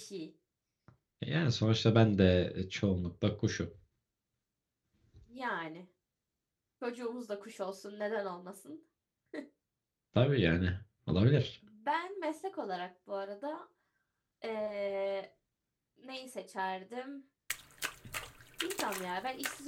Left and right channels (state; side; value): identical; both; correlation 1.00